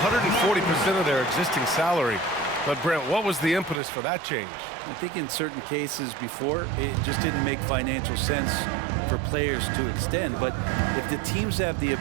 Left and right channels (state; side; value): drops out; left; at 3.8 s